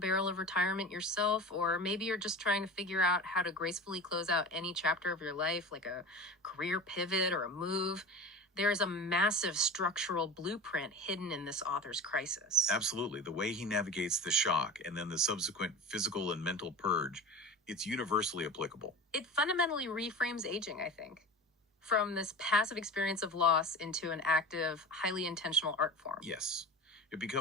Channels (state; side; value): normal; both; correlation 0.33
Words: of retirement yourself, or maybe you're just trying to figure out how to gracefully close out any chapter of your life, like a career pivot or a move, there is a massive structural blueprint hidden in this author's crisis. Absolutely. The way he navigates the shock and then the subsequent physical and mental purge, it's universally applicable. It fundamentally reframes aging, I think, from this passive experience of loss into an active, highly intentional art form. Yes. It